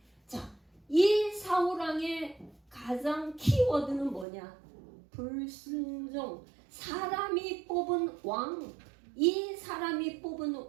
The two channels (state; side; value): drops out; left; at 4.2 s